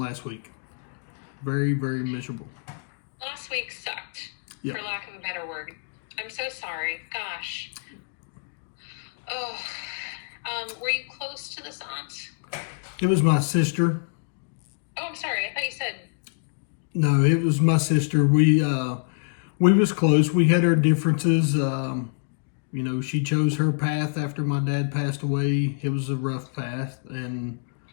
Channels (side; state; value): right; silent; digital silence